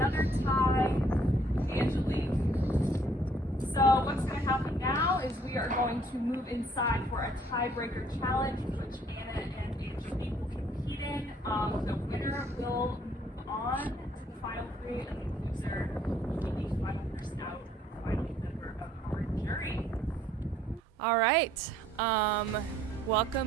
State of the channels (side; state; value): both; normal; correlation 0.63